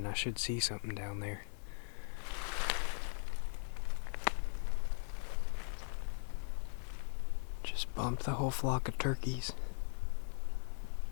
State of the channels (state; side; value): silent; right; digital silence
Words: I should see something down there. Just bumped the whole flock of turkeys.